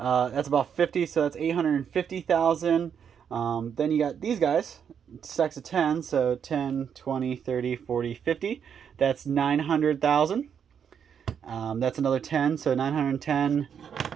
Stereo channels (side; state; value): left; quieter; 7.7 dB